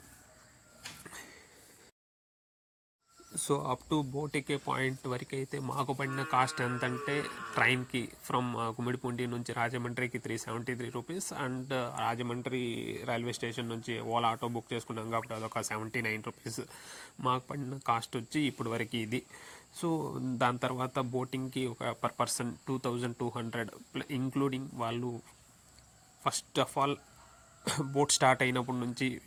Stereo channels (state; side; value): identical; both; correlation 1.00